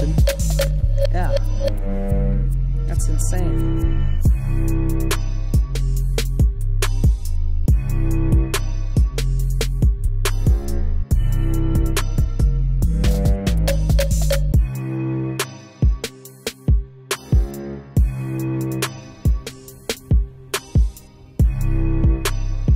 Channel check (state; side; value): identical; both; correlation 1.00